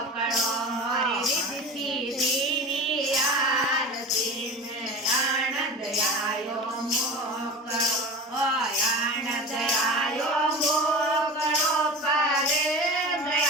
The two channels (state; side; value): normal; both; correlation 0.32